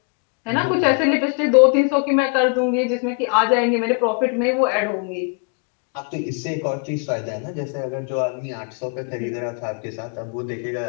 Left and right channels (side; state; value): right; quieter; 34.8 dB